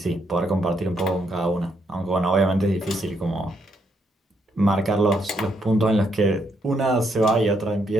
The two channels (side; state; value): both; normal; correlation 0.75